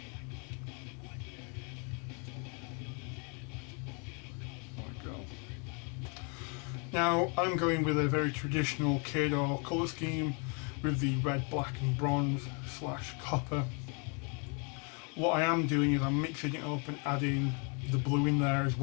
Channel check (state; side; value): quieter; right; 35.9 dB